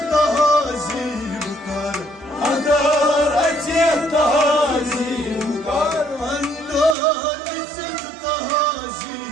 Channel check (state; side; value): drops out; left; at 7.0 s